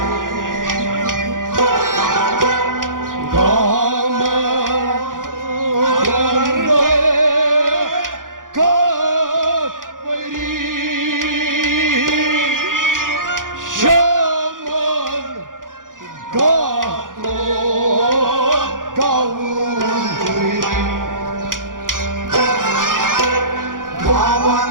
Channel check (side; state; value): left; late; 0.89 ms